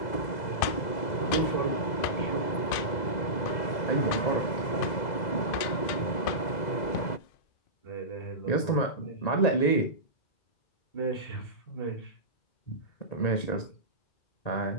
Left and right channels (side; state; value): right; late; 2.5 ms